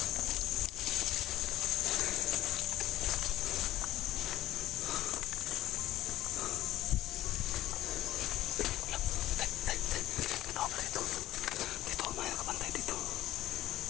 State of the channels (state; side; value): quieter; right; 14.6 dB